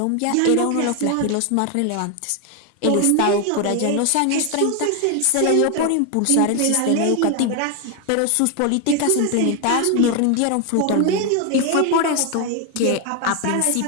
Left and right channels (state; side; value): different; both; correlation 0.01